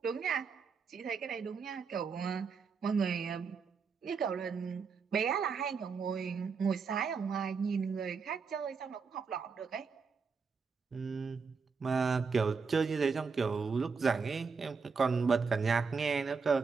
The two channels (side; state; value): left; quieter; 5.3 dB